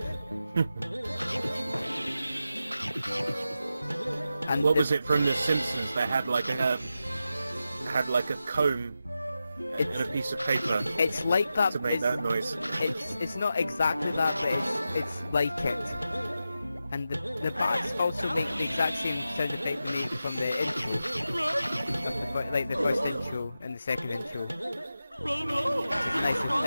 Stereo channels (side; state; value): both; inverted; correlation -0.91